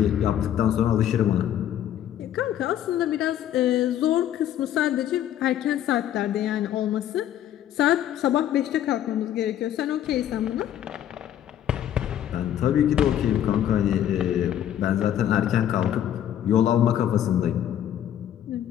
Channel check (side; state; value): right; quieter; 11.0 dB